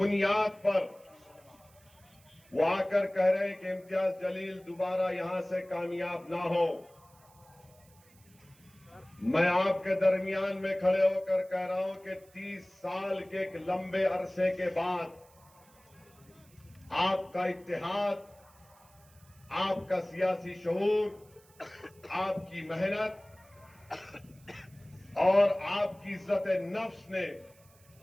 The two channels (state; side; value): noise; right; hiss, 28 dB below the sound